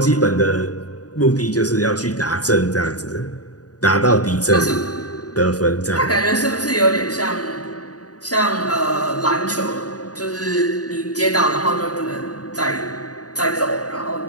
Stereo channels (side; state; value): right; late; 0.68 ms